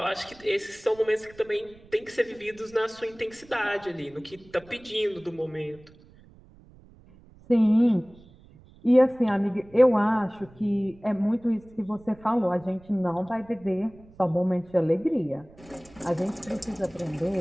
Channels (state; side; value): noise; right; rumble, 24 dB below the sound